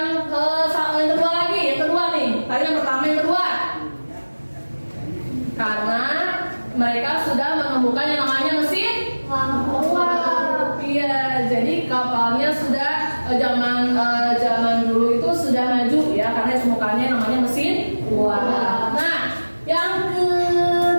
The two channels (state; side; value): inverted; both; correlation -1.00